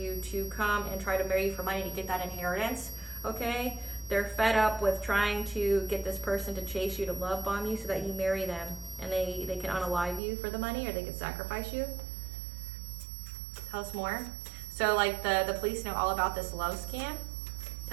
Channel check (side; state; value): left; drops out; at 10.2 s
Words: to come and try to marry you for money to get that inheritance, okay? They're fed up with trying to get this person to chase you, to love bomb you so that you marry them, and they can unalive you for the money, or they can sacrifice you. Tell us more. So like the police know all about this love scam.